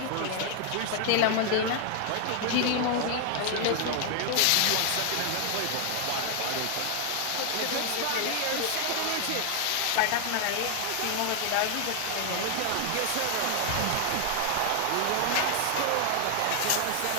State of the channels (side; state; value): both; different; correlation 0.00